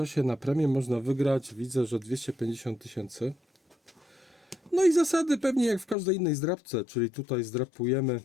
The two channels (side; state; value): right; drops out; at 6.0 s